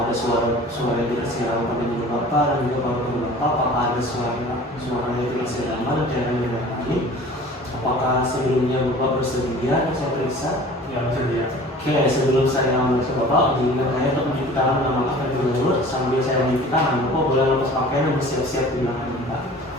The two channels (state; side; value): normal; both; correlation 0.44